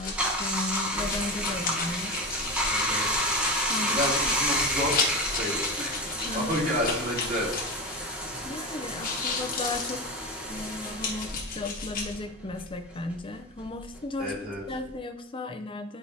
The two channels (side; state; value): both; normal; correlation 0.22